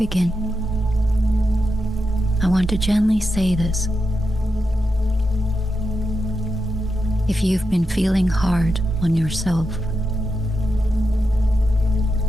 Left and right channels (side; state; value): both; normal; correlation 0.87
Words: I want to gently say this. If you've been feeling hard on yourself,